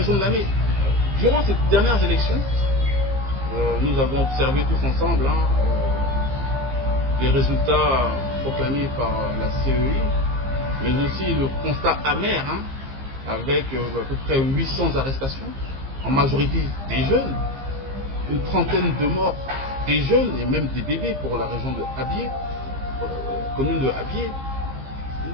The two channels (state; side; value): late; left; 15 ms